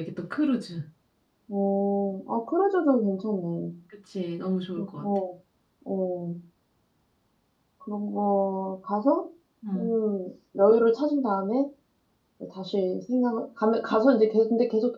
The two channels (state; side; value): identical; both; correlation 1.00